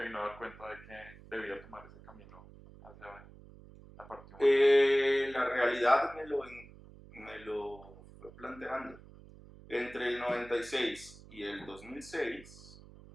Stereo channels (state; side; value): noise; right; hum, 20 dB below the sound